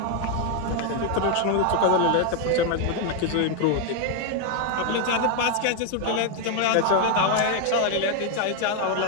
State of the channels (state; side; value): different; both; correlation 0.01